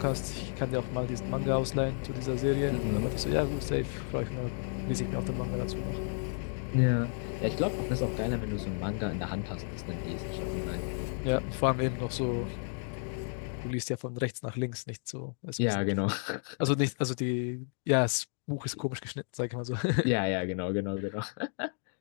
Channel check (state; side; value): silent; right; 56 dB below the other